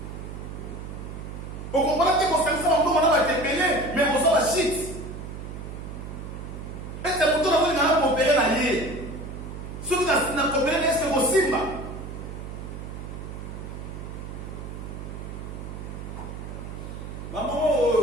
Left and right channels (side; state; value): right; noise; hum, 9 dB below the sound